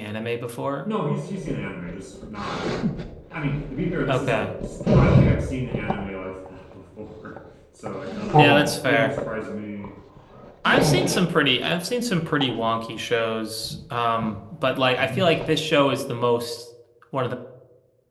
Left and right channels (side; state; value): both; identical; correlation 1.00